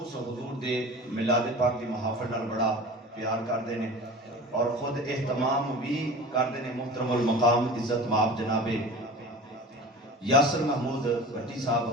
حضور دے میلاد پاک دی محافل نال بڑا پیار کردے نے اور خود اہتمام بھی کردے نے محترم المقام عزت مآب جناب یاسر محمود بٹی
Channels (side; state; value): both; normal; correlation 0.37